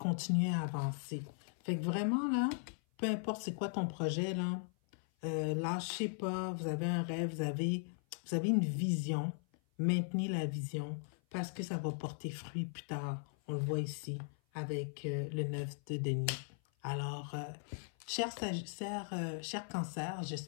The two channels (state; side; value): silent; right; 52 dB below the other